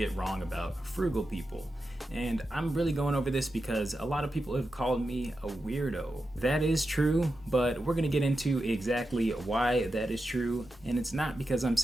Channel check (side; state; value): both; normal; correlation 0.90